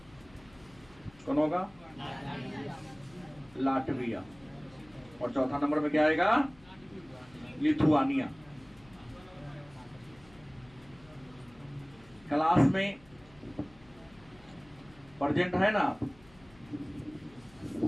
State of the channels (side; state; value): left; noise; hum, 25 dB below the sound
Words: कौन होगा, लाटविया। और चौथा नंबर में क्या आएगा, लिथुआनिया। क्लास में प्रेजेंट है ना आप,